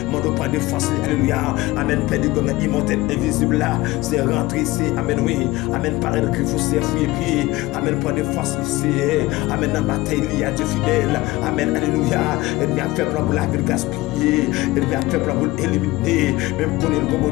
Mon nom, pour des forces, alléluia. Amen, père du gomme immortel, invisible là. C'est rentré ici. Amen, oui. Amen, paraître que vous servez puis. Amen, pour des forces ici. Amen, dans la bataille, il y a du fidèle. Amen, alléluia. Et bien, fait pour la ville gaspiller. Et bien, fait pour vous éliminer. Même qu'on est le comme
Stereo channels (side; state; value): right; quieter; 19.5 dB